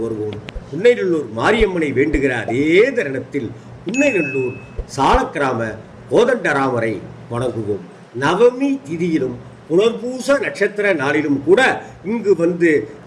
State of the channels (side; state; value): both; identical; correlation 1.00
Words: வருவோம். புன்னைநல்லூர் மாரியம்மனை வேண்டுகிற அதே தருணத்தில் புன்னைநல்லூர் சாலக்கிராம கோதண்டராமரை வணங்குவோம். நவமி திதியிலும் புனர்பூச நட்சத்திர நாளிலும் கூட இங்கு வந்து